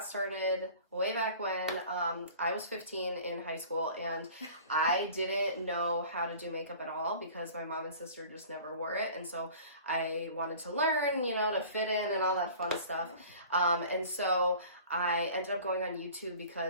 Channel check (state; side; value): inverted; both; correlation -0.44